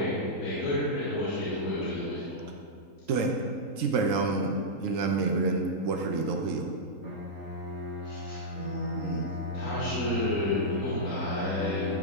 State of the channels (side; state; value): right; late; 3.8 ms